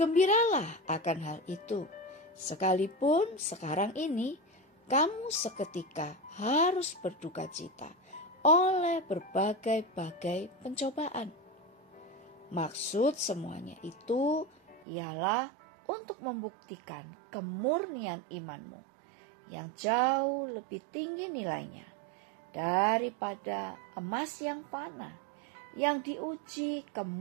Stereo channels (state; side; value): drops out; left; at 14.9 s